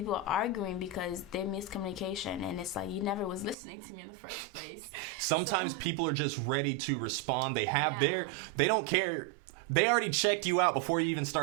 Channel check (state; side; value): drops out; left; at 3.6 s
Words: are arguing because they're miscommunication, and it's like, you never was listening to me in the first place. Sometimes people are just ready to respond. They have they don't care. They already checked you out before you even